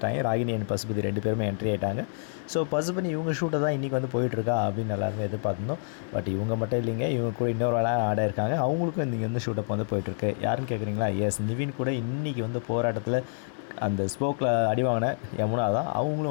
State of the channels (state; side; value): silent; right; 60 dB below the other